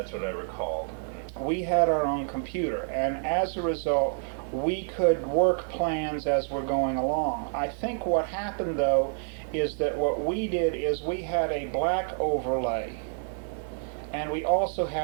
what I recalled. We had our own computer, and as a result, we could work plans as we're going along. I think what happened, though, is that what we did is we had a black overlay, and we also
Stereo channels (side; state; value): left; silent; 56 dB below the other